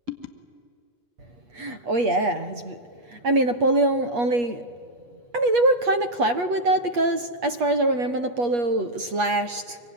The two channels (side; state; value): left; late; 8.3 ms